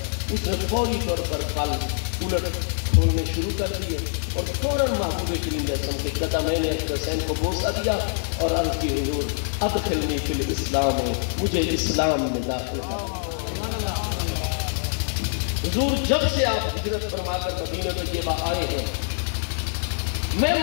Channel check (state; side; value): silent; right; digital silence